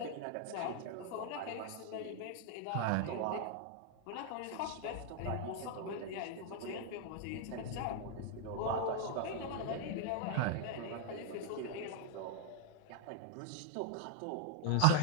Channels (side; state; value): both; different; correlation 0.01